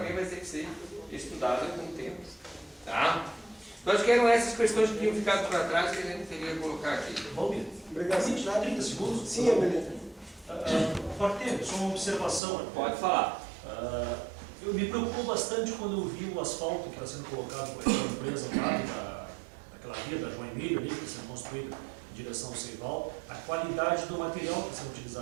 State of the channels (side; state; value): left; drops out; at 12.4 s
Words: vai ter que ser estudada com o tempo. Tá? Então acho que eram essas questões que tinham ficado para trás que a gente teria que colocar aqui. Valmir, Obrigado. 30 segundos? Sim, Amelita. Pode ter, só uma observação. Pode falar. Eu me preocupou bastante quando eu vi o asfalto que está sendo colocado por aquela empresa lá, daquela via da João Emílio ali, que está sendo construída em direção ao Seival, a qualidade do material que está sendo